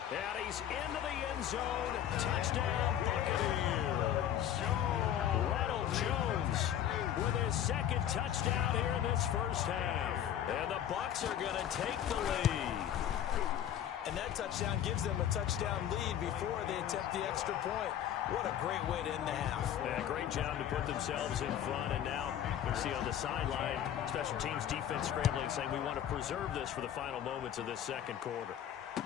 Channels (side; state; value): right; quieter; 10.4 dB